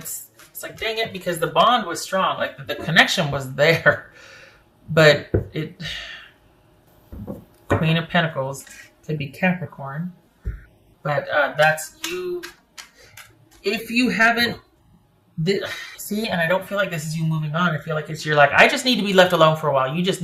like, dang it, because the bond was strong. Like, the connection was there. But Queen of Pentacles could be Capricorn. But that's you. If you haven't... See, and I don't feel like this is you moving on. I feel like you're like, I just need to be left alone for a while. You just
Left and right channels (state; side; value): identical; both; correlation 1.00